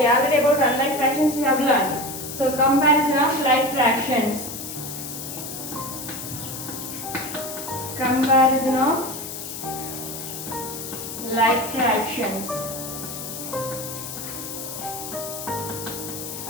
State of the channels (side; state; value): left; noise; hiss, 8 dB below the sound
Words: Already about unlike fractions we have learned. So comparison of like fractions. Comparison of like fractions.